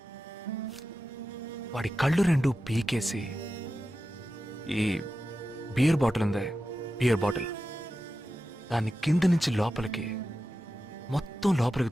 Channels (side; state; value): both; normal; correlation 0.92